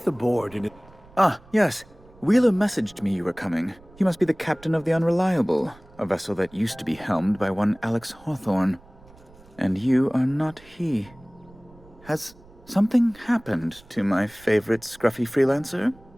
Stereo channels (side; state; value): right; noise; rumble, 25 dB below the sound